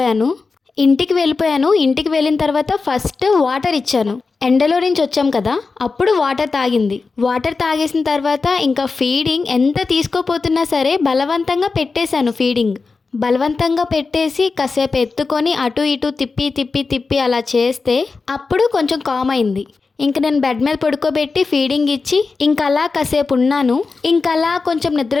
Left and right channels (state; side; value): quieter; right; 4.3 dB